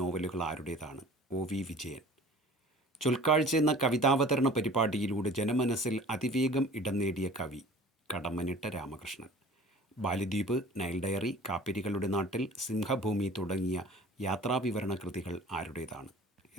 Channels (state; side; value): normal; both; correlation 0.45